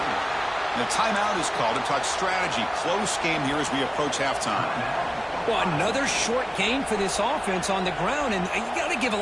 And a timeout is called to talk strategy. Close game here as we approach halftime. Well, another short game for this offense on the ground, and you got to give a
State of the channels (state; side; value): identical; both; correlation 1.00